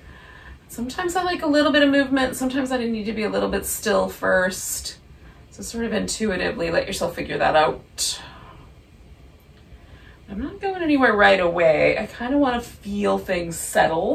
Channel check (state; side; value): identical; both; correlation 1.00